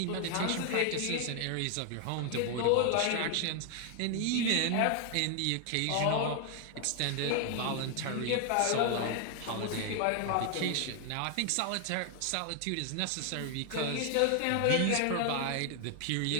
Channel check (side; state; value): both; different; correlation 0.00